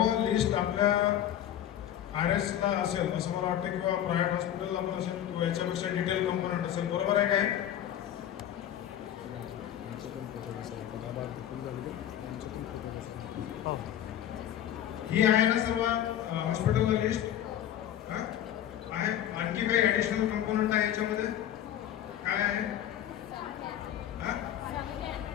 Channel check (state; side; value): quieter; right; 11.1 dB